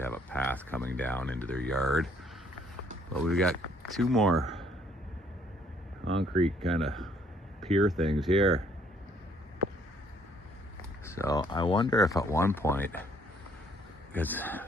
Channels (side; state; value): both; normal; correlation 0.63